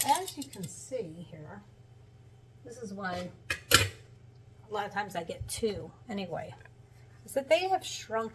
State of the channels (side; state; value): both; identical; correlation 1.00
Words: you can see here, this is why a lot of times I get 2 anyway, is that they have